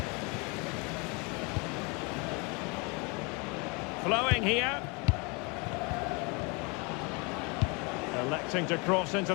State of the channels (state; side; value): quieter; right; 30.1 dB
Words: Flowing here. Electing to cross